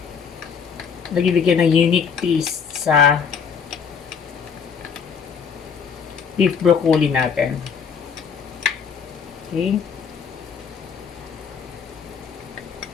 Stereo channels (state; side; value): quieter; right; 6.5 dB